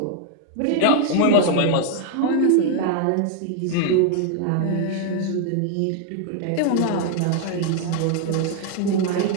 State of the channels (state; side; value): different; both; correlation 0.01